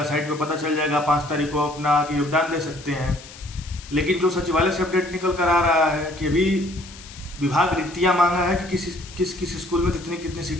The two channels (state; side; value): noise; left; hiss, 18 dB below the sound